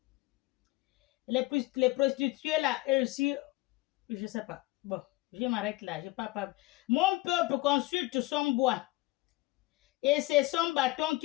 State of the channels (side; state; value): right; quieter; 20.5 dB